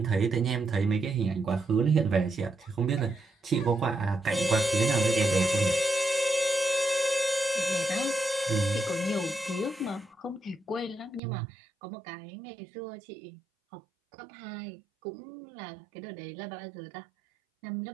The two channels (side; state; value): left; drops out; at 11.2 s